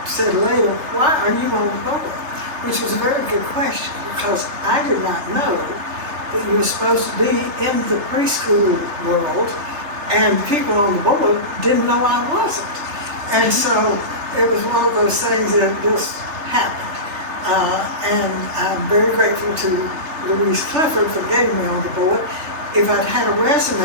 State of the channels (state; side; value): late; left; 3.3 ms